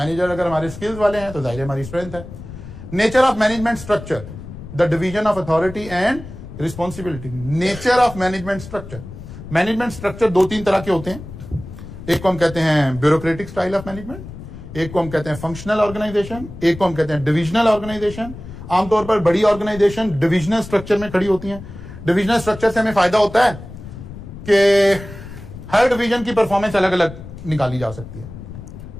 अगर हमारे स्किल्स वाले हैं तो जाहिर है हमारी स्ट्रेंथ है। Nature of management structure, the division of authority and responsibility. Nature of management structure, management structure दो तीन तरह के होते हैं। एक को हम कहते हैं ब्यूरोक्रेटिक स्टाइल ऑफ मैनेजमेंट, एक को हम कहते हैं फंक्शनल ऑर्गेनाइजेशन, एक को हम कहते हैं डिविजनल ऑर्गेनाइजेशन। आमतौर पर बड़ी ऑर्गेनाइजेशन डिविजनल स्ट्रक्चर में खड़ी होती हैं। डिविजनल स्ट्रक्चर से हमें फायदा होता है कि हर डिवीजन की परफॉर्मेंस अलग अलग निकाली जा सकती है,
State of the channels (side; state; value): left; noise; rumble, 13 dB below the sound